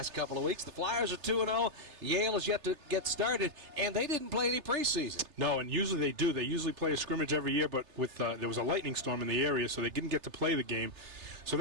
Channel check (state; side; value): late; left; 3.3 ms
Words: couple of weeks. The Flyers are 2-0. Yale is yet to get started, and they didn't play any preseason. No, and usually they do. They usually play a scrimmage every year, but with there was a lightning storm in the area, so they didn't get to play the game. So